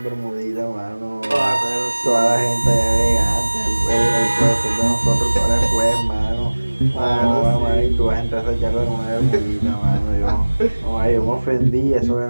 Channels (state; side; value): inverted; both; correlation -1.00